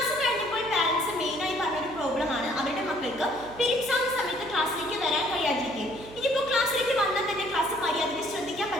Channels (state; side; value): noise; right; hum, 18 dB below the sound